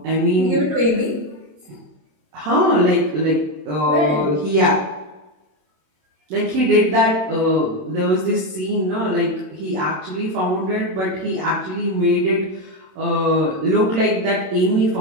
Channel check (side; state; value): left; late; 27 ms